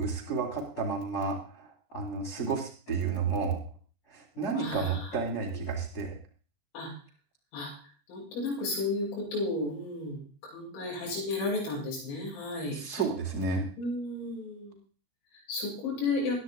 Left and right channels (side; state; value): right; late; 21 ms